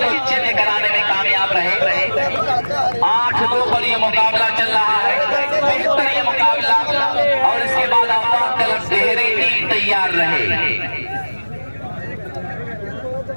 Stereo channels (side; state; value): both; inverted; correlation -1.00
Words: चिन्ह कराने में कामयाब रहे। 8-2 पर ये मुकाबला चल रहा है, बेहतर ये मुकाबला, और इसके बाद आप तरफ देहरी टीम तैयार रहे।